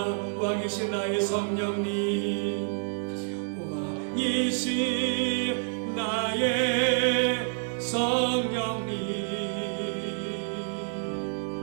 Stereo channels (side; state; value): left; silent; 59 dB below the other